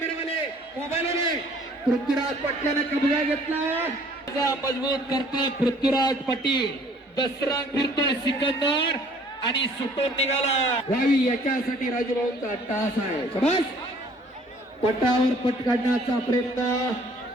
मोबाईलवाले पृथ्वीराज पाटलाने कब्जा घेतला, मजबूत करतोय पृथ्वीराज पाटील, दसरा फिरतोय सिकंदर आणि सुटून निघाला व्हावी याच्यासाठी राजूभाऊंचा तास आहे. शाबास. पटावर पट काढण्याचा प्रयत्न,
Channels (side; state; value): both; normal; correlation 0.56